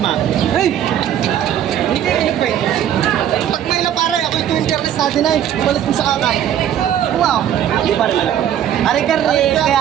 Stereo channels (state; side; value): quieter; left; 10.4 dB